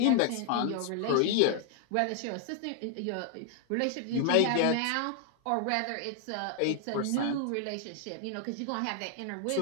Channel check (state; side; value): different; both; correlation 0.00